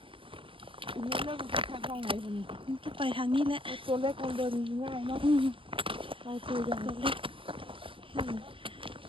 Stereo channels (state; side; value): late; left; 0.25 ms